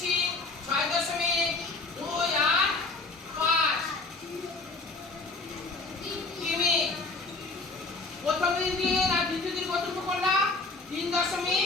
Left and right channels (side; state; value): right; quieter; 3.5 dB